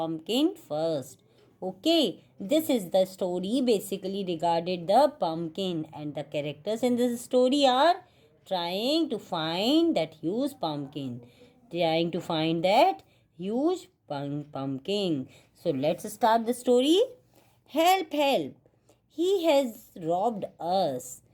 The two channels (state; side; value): identical; both; correlation 1.00